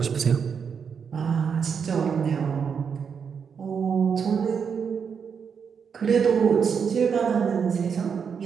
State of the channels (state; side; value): quieter; left; 6.6 dB